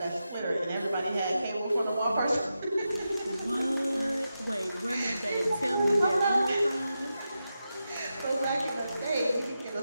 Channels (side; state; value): both; inverted; correlation -0.89